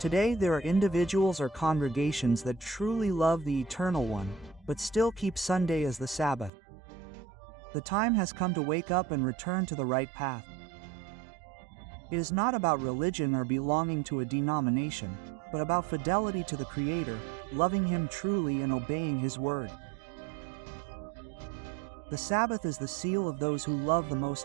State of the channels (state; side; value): drops out; left; at 6.5 s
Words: there are individuals or congregations that truly love the Eternal One, but still keep Sunday as the Sabbath. The time has come to wake up and return to the right path. It is not about religion or belonging to a denomination, but about fidelity to the Creator, loving Him truly and obeying His word. The Sabbath is the seal of those who love the Most